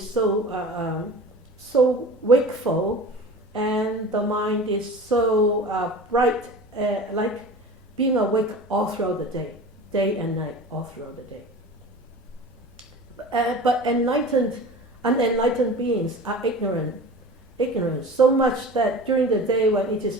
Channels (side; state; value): both; normal; correlation 0.37